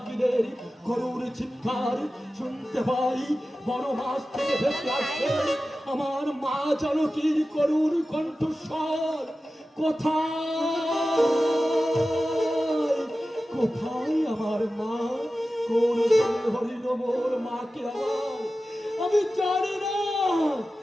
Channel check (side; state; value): both; normal; correlation 0.94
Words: করুণ চিৎকার, শুনতে পাই বড় মাছ থেকে ভেসে আসে আমার মা জানকীর করুণ কণ্ঠস্বর। কোথায় কোথায় আমার মা? কোন হরিণ মোর মাকে আমার? আমি জানি না